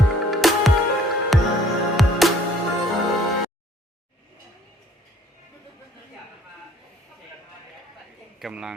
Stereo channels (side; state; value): both; normal; correlation 0.58